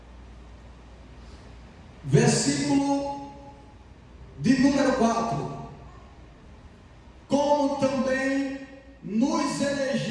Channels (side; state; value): both; identical; correlation 1.00